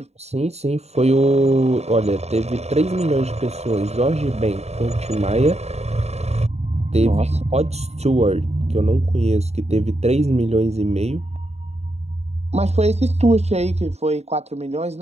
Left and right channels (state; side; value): late; left; 0.31 ms